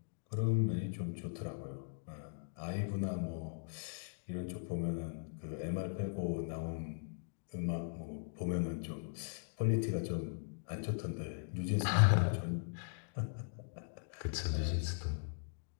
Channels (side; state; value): right; silent; digital silence